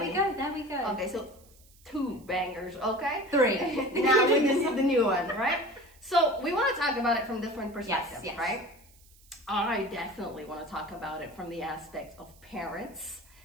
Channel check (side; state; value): right; noise; hiss, 27 dB below the sound